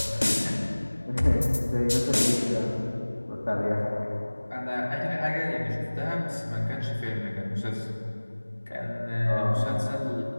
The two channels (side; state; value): both; inverted; correlation -1.00